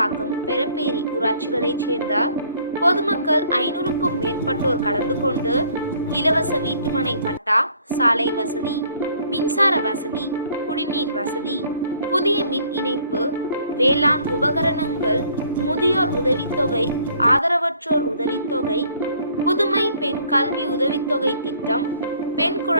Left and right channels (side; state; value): both; inverted; correlation -0.59